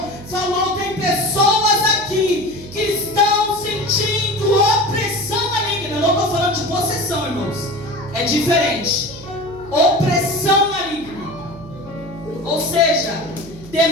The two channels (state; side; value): noise; right; hum, 18 dB below the sound